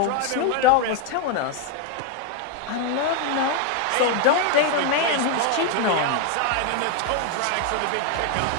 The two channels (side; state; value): both; different; correlation 0.01